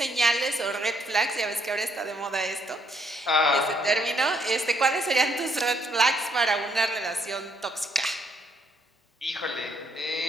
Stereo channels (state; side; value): normal; both; correlation 0.70